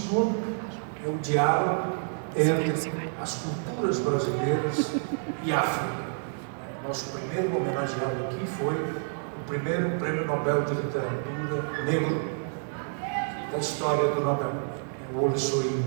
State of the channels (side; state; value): left; silent; digital silence